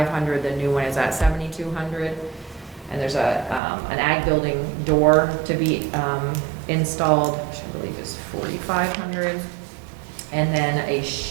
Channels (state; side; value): drops out; left; at 3.6 s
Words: The new one is at $7,200. And there's an ag building door to be installed, which I believe is $4,500. And then a